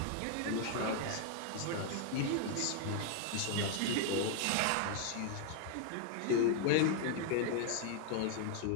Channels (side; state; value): both; different; correlation 0.00